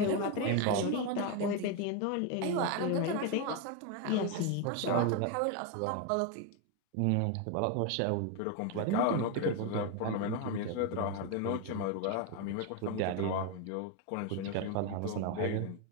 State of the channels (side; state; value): both; different; correlation 0.02